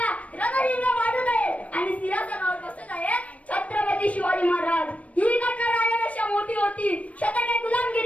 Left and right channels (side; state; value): right; late; 0.066 ms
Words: रणहिंग वाढत आहे आणि सिंहासनावर बसत आहेत छत्रपती शिवाजी महाराज. ही घटना राजापेक्षा मोठी होती. शतके